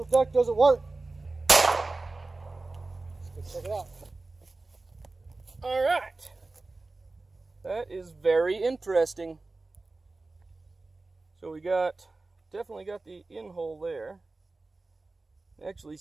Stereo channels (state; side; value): quieter; left; 3.4 dB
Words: duck doesn't work. Let's go check it out. All right. That is very interesting. So we definitely got the in hole there. Actually